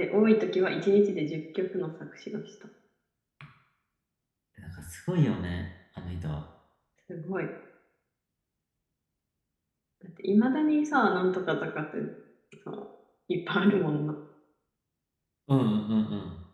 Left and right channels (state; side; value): identical; both; correlation 1.00